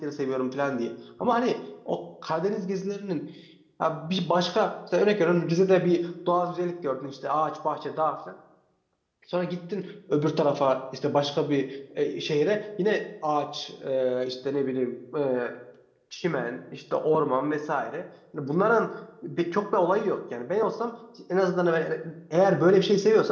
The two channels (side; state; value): both; identical; correlation 1.00